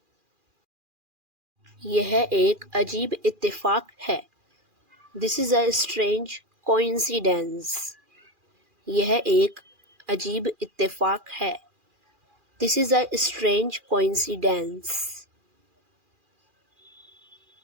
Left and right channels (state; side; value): late; left; 2.4 ms